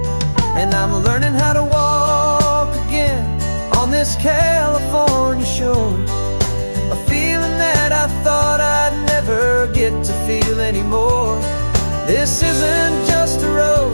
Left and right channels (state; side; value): inverted; both; correlation -1.00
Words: And I'm learning how to walk again on this California shore, a feeling that I thought I'd never get to feel anymore. This isn't just a